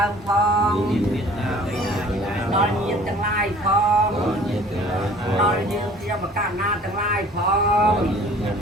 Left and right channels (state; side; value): normal; both; correlation 0.50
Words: ើមផងដល់ញាតិទាំងឡាយផងដល់យើងជាបកណាទាំងឡាយផង